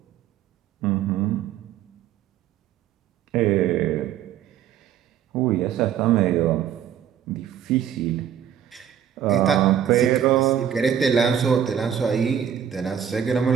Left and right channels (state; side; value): quieter; left; 9.2 dB